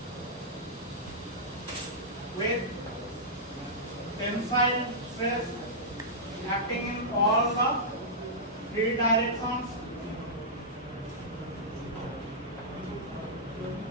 with tensile stress acting in all the 3 directions.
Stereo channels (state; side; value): normal; both; correlation -0.13